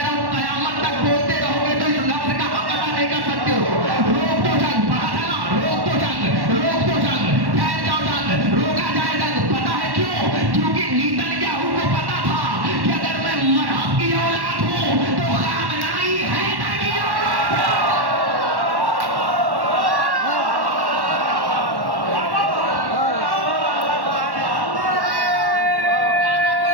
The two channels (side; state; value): left; late; 1.1 ms